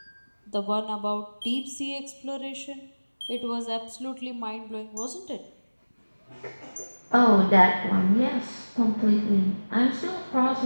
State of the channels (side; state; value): both; inverted; correlation -1.00